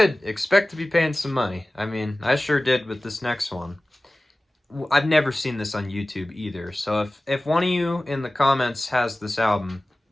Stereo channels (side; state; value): both; normal; correlation 0.97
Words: expect to be paying some money. I mean, I sure did with this next one. I've never seen this on YouTube either, so if one of you in the comments has this album,